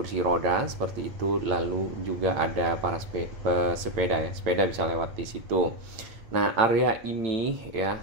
roda seperti itu. Lalu juga ada para sepeda, ya, sepeda bisa lewat di situ. Nah, area ini, ya,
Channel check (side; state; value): left; late; 8.8 ms